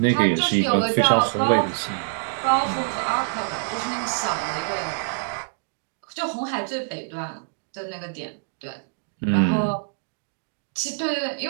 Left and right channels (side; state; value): left; silent; digital silence